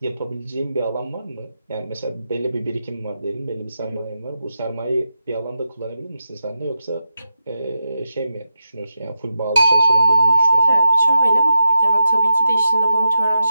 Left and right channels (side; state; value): both; inverted; correlation -0.89